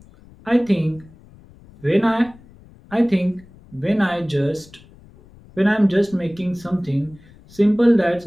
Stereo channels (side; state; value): left; noise; rumble, 25 dB below the sound